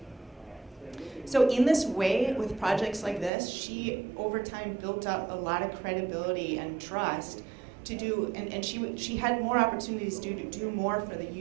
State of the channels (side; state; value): left; drops out; at 3.3 s